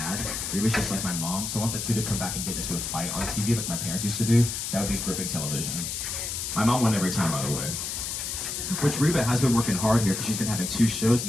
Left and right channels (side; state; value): left; noise; hiss, 4 dB below the sound